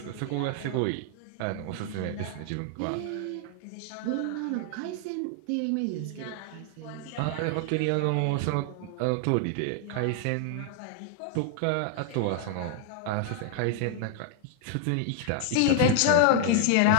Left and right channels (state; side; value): different; both; correlation 0.00